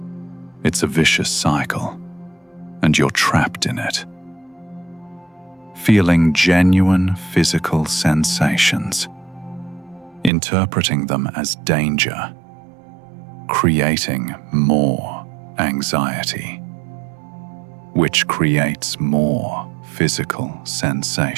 It's a vicious cycle, and you're trapped in it. Feeling genuine physical sensations, interpreting them as danger, creating more anxiety, which creates more physical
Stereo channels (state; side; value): drops out; left; at 10.3 s